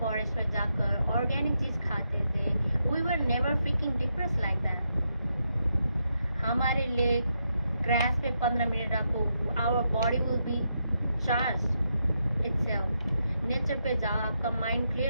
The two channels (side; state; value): both; inverted; correlation -0.82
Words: में जाकर ऑर्गेनिक चीज खाते थे. We were never freaking depressed like that. हमारे लिए ग्रास पे 15 मिनट रखो, our body will be charged itself. Nature पे जाओ, आपका माइंड